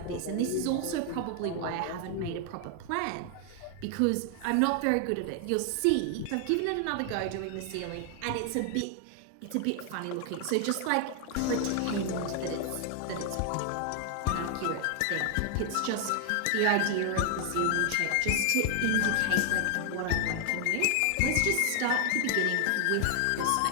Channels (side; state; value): both; different; correlation 0.00